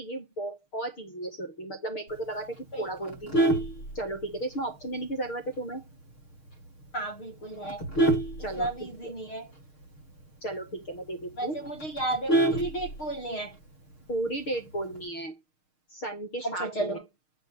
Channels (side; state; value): right; late; 6.5 ms